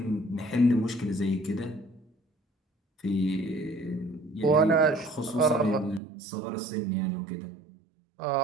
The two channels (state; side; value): drops out; left; at 6.0 s